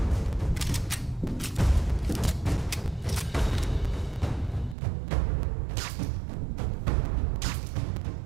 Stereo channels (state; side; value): drops out; left; at 4.8 s